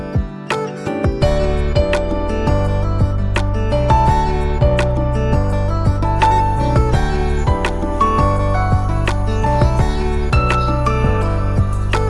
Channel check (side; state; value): both; identical; correlation 1.00